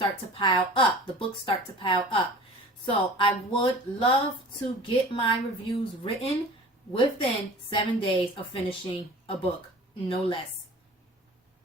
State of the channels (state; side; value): normal; both; correlation 0.42